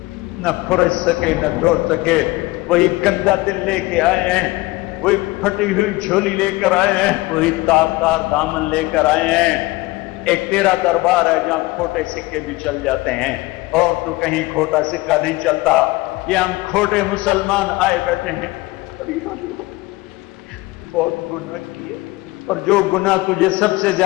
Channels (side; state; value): right; quieter; 20.8 dB